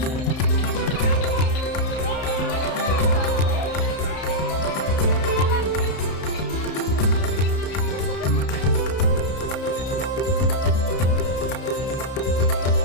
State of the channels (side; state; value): right; late; 31 ms